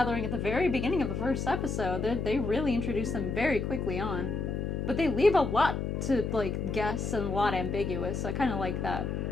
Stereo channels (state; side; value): noise; left; hum, 2 dB below the sound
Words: at the very beginning of the first episode. They really introduce them very quickly on. But they leave a lot to, like, guess and a lot ambiguous. So I kind of like that.